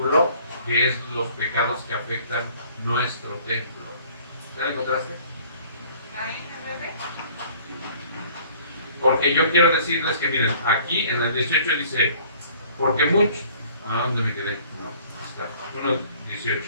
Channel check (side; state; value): both; inverted; correlation -0.55